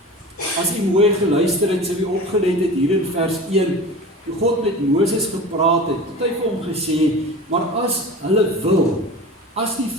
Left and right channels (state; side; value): normal; both; correlation 0.34